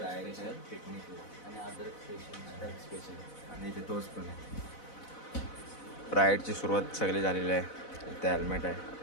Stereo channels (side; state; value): right; late; 4.0 ms